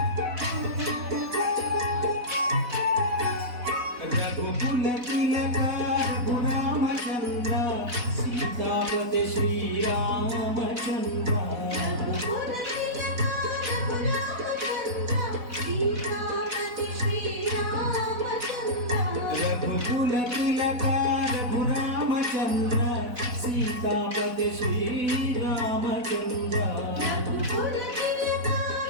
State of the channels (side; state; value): left; late; 4.0 ms